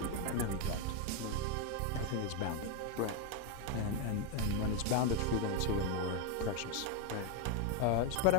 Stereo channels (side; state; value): both; different; correlation 0.02